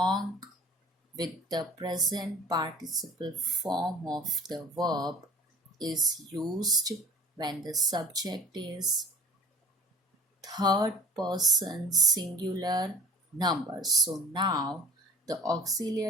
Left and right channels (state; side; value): normal; both; correlation 0.44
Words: with the present participle form of the verb is used when the subject is third person singular number. So now the